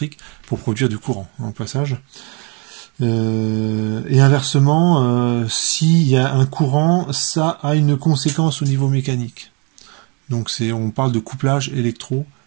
pour produire du courant, en passage. Et inversement, s'il y a un courant, ça a une conséquence au niveau mécanique. Donc on parle de couplage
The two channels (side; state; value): left; quieter; 32.5 dB